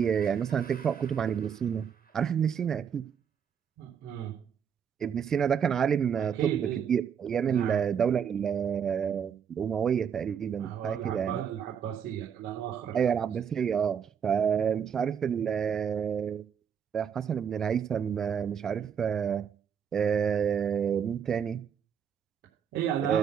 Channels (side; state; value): left; quieter; 7.7 dB